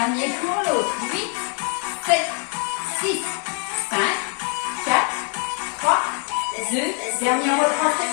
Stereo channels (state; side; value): quieter; right; 36.2 dB